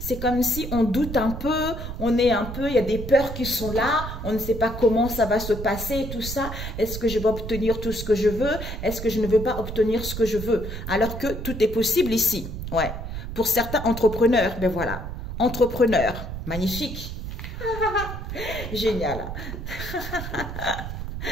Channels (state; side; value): noise; right; rumble, 7 dB below the sound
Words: comme si on doute un peu, il y a des peurs qui sont là, on ne sait pas comment ça va se passer et tout ça. Est-ce que je vais obtenir tout ce que je veux? Est-ce que je ne veux pas obtenir ce que je veux? Alors que tout est possible ici. Ouais. Pour certains entrepreneurs, ben voilà. Entrepreneur, magnifique. Génial.